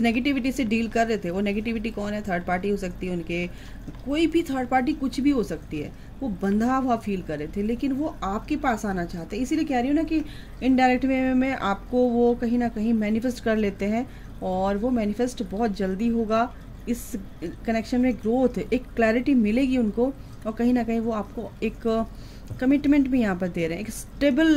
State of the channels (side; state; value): both; identical; correlation 1.00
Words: नेगेटिविटी से डील कर रहे थे। वो नेगेटिविटी कौन है, थर्ड पार्टी हो सकती है उनके, कोई भी थर्ड पार्टी कुछ भी हो सकती है। वो बंधा हुआ फील कर रहे थे, लेकिन वो आपके पास आना चाहते हैं। इसीलिए कह रही हूँ ना कि इनडायरेक्ट वे में आपको वो कहीं ना कहीं मैनिफेस्ट कर लेते हैं, और वो मैनिफेस्ट बहुत जल्दी होगा। इस कनेक्शन में ग्रोथ, एक क्लैरिटी मिलेगी उनको, और कहीं ना कहीं वो आपको एक कमिटमेंट भी यहाँ पर दे रहे हैं। एक स्टेबल